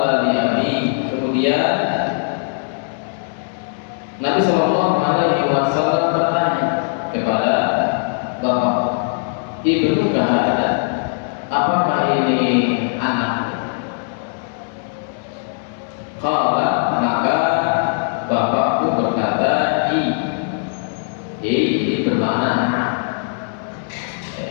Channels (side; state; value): right; silent; digital silence